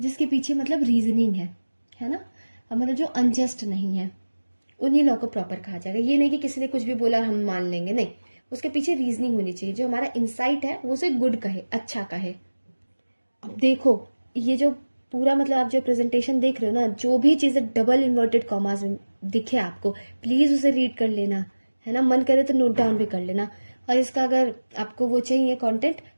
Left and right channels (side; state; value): both; inverted; correlation -1.00